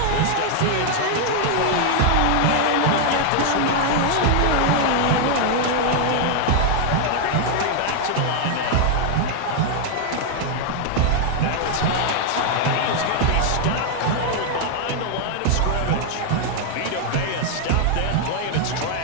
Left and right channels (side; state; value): both; different; correlation 0.00